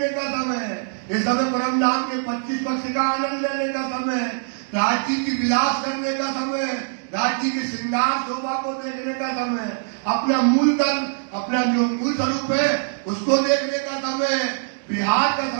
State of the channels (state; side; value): silent; left; digital silence